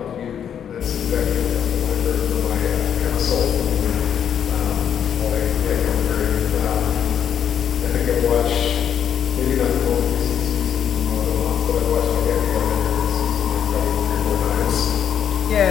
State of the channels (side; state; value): right; quieter; 8.8 dB